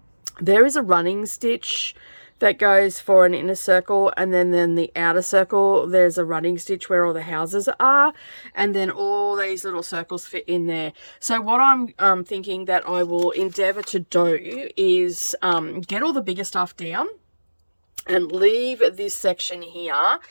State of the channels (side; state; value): both; inverted; correlation -1.00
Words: There is a running stitch that goes for an inner circle, and then the outer circle, there's a running stitch where all the houses are, and then all these little circles fit in there. So what I'm thinking that I will endeavor to do is get all the bigger stuff down and leave this section here